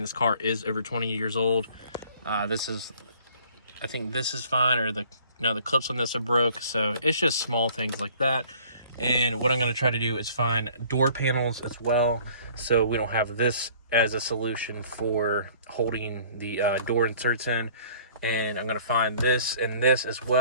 car is over 20 years old. I think this is fine, or the clips on this are broke, so it's just small things like that. And what I'm going to try to do is find door panels as well, so we don't have this as a solution for holding the door inserts in. And I'm going to find this and this as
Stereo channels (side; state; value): both; inverted; correlation -0.53